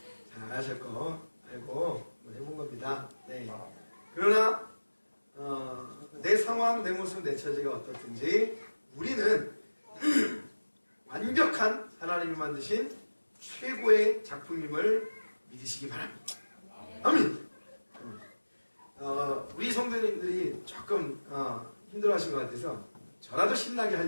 잘하실 거 알고 해본 겁니다. 네. 그러나 내 상황, 내 모습, 내 처지가 어떻든지 우리는 완벽한 하나님이 만드신 최고의 작품임을 믿으시기 바랍니다. 아멘. 우리 성도님들이 조금 힘들어하신 것 같아서 저라도 신나게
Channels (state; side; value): inverted; both; correlation -1.00